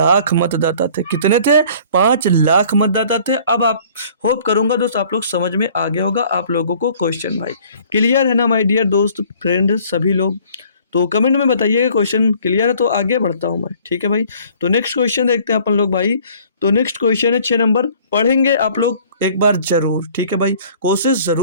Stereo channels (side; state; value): both; inverted; correlation -0.54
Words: मतदाता थे। कितने थे, 5 लाख मतदाता थे। अब आप होप करूंगा दोस्त आप लोग समझ में आ गया होगा आप लोगों को क्वेश्चन भाई। क्लियर है ना माय डियर दोस्त फ्रेंड सभी लोग, तो कमेंट में बताइएगा क्वेश्चन क्लियर है तो आगे बढ़ता हूं मैं, ठीक है भाई। तो नेक्स्ट क्वेश्चन देखते हैं अपन लोग भाई। तो नेक्स्ट क्वेश्चन है 6 नंबर, पढ़ेंगे आप लोग एक बार जरूर, ठीक है भाई। कोशिश